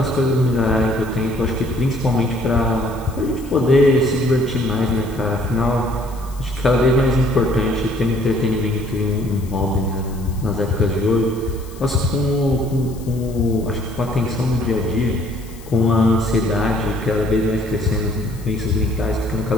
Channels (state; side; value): noise; left; hiss, 22 dB below the sound